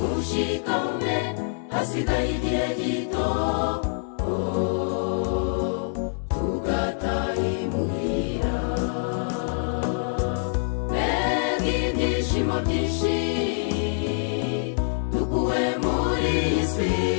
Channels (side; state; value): right; silent; digital silence